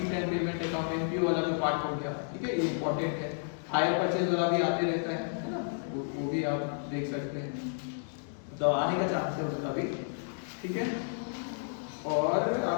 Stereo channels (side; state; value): right; silent; digital silence